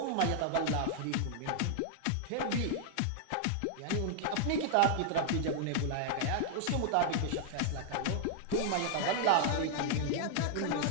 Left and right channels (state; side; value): different; both; correlation -0.01